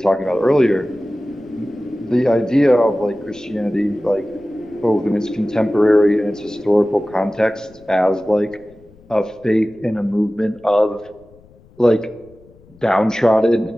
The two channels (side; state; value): left; noise; rumble, 27 dB below the sound